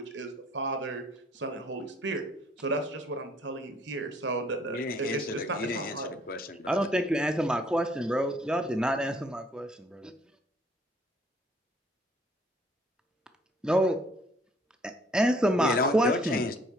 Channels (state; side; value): normal; both; correlation 0.61